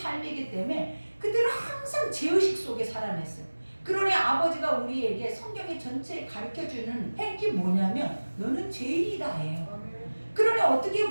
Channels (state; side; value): inverted; both; correlation -1.00